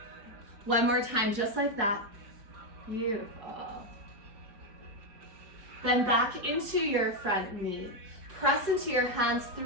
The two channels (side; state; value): left; late; 4.7 ms